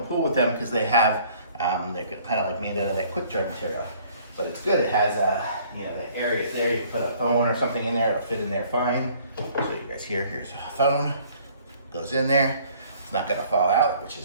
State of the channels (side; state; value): both; inverted; correlation -0.57